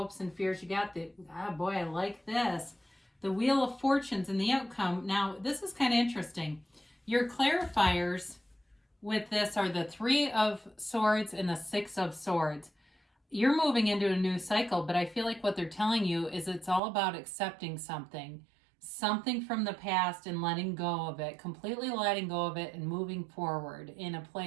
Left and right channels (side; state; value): left; drops out; at 16.8 s